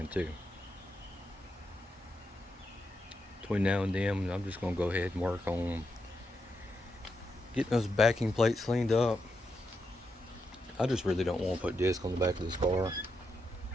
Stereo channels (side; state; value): both; normal; correlation 0.84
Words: too. Between now and then, I'm just going to go ahead and work on getting those backing plates cleaned up. I just really don't want to put disc on the back of this car.